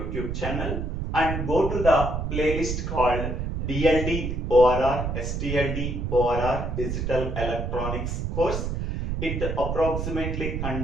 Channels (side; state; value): right; noise; rumble, 3 dB below the sound